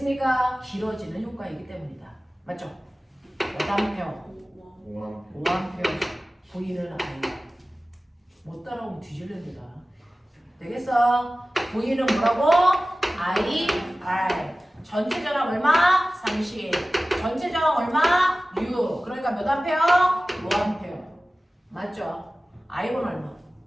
길어지는 효과이기 때문이다. 맞죠? 몇 암페어? 5암페어. V는 아니야. 못 따라오면 뒤질랜다. 되겠어? V는 뭐라고? IR. 전체 저항 얼마? 30. 전체 저항 얼마? 6. 그러니까 몇 암페어? 5암페어. 맞죠? I1 얼마?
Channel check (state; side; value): normal; both; correlation 0.97